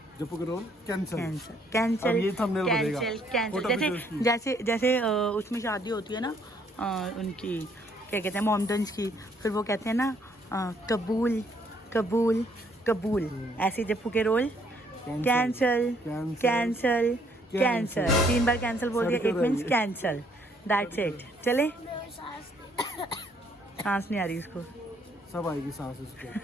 जप्पू के रोल कैंसिल। कैंसिल अब ये thumbnail बनेगा। कैंसिल। फोटो जैसे वीडियोस की। जैसे उसमें शादी होती है ना, उनकी क्या कहते हैं, मोमडन्स की, फिर वो कहते हैं ना कबूल कबूल कबूल, ऐसे जप्पू के रोल कैंसिल कैंसिल कैंसिल, 3 बार कैंसिल बोल दिया, it means cancel, that's it. चले, सांस नहीं आ रही उसको, सब आएगी सांस इसको।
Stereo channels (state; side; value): normal; both; correlation 0.67